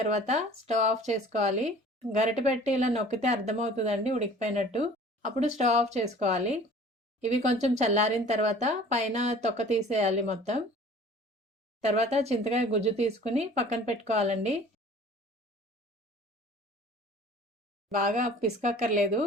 స్టవ్ ఆఫ్ చేసుకోవాలి. గరిటె పెట్టి ఇలా నొక్కితే అర్థమవుతుందండి ఉడికిపోయినట్టు. అప్పుడు స్టవ్ ఆఫ్ చేసుకోవాలి. ఇవి కొంచెం చల్లారిన తర్వాత పైన తొక్క తీసేయాలి మొత్తం. తర్వాత చింతకాయ గుజ్జు తీసుకుని పక్కన పెట్టుకోవాలండి. బాగా పిసకక్కర్లేదు,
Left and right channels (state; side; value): normal; both; correlation 0.47